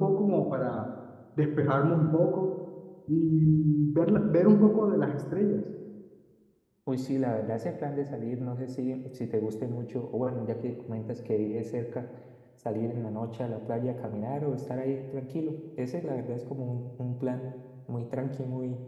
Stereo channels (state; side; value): identical; both; correlation 1.00